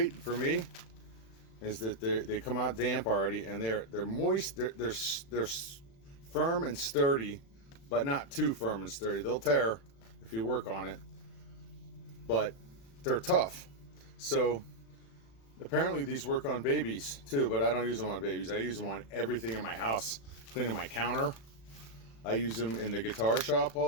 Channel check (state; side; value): late; right; 36 ms